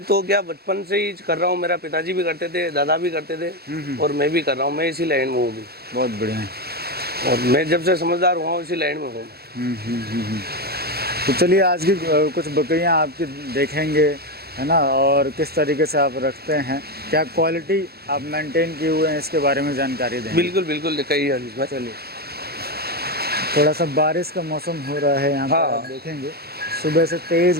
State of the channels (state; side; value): late; left; 0.46 ms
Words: तो क्या बचपन से ही कर रहा हूँ, मेरा पिताजी भी करते थे, दादा भी करते थे, और मैं भी कर रहा हूँ। मैं इसी लाइन में हूँ भी। बहुत बढ़िया। और मैं जब से समझदार हुआ हूँ इसी लाइन में हूँ। तो चलिए, आज की कुछ बकरियां आपकी देखेंगे, है ना, और किस तरीके से आप रखते हैं, क्या क्वालिटी आप मेंटेन किए हुए हैं, इसके बारे में जानकारी देंगे। बिल्कुल बिल्कुल, दिखाइए हरीश भाई। चलिए, थोड़ा सा बारिश का मौसम हो रहा है यहाँ पर, हाँ। आप देखेंगे सुबह से तेज़